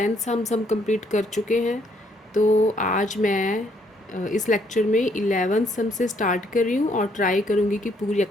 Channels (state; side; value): normal; both; correlation 0.69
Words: हम कंप्लीट कर चुके हैं. तो आज मैं इस लेक्चर में 11 सम से स्टार्ट कर रही हूँ और ट्राई करूँगी कि पूरी